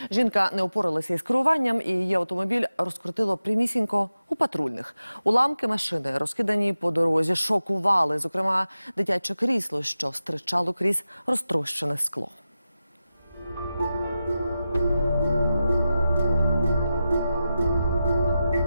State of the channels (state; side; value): inverted; both; correlation -0.92